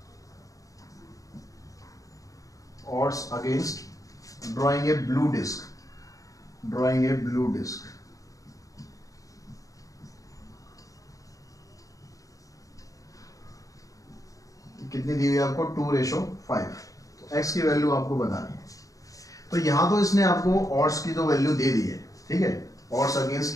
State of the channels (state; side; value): late; right; 0.16 ms